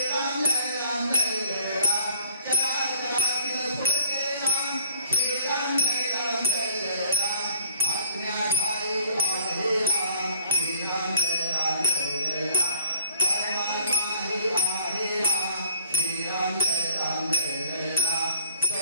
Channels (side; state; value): both; inverted; correlation -0.57